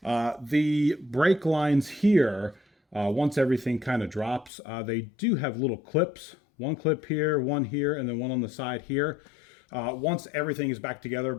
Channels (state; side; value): drops out; right; at 4.5 s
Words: the brake lines here, once everything kind of drops, they do have little clips. One clip here, one here, and then one on the side here. Once everything is back